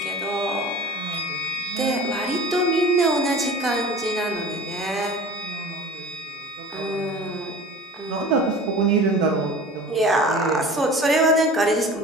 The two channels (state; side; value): normal; both; correlation 0.39